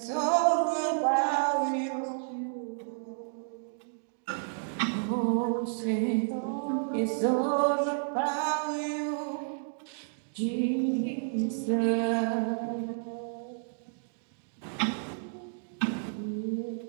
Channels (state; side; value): silent; left; digital silence